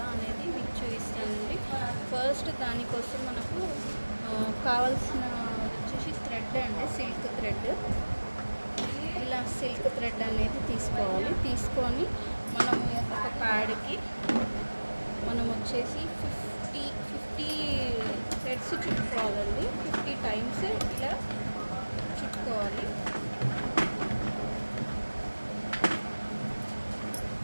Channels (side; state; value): both; inverted; correlation -1.00